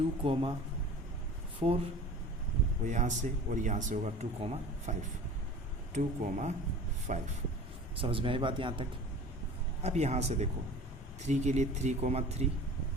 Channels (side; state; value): both; normal; correlation 0.40